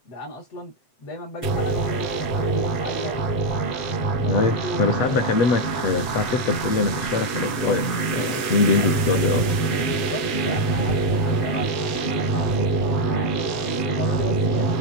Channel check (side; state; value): right; late; 7.9 ms